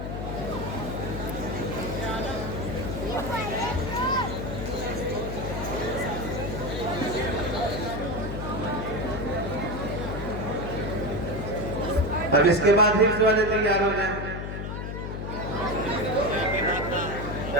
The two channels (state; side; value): noise; left; hum, 5 dB below the sound